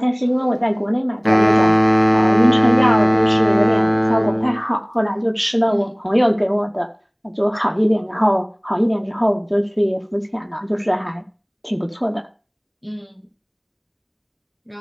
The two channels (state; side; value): identical; both; correlation 1.00